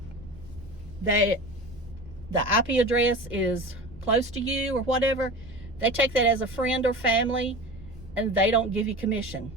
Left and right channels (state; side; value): noise; right; rumble, 19 dB below the sound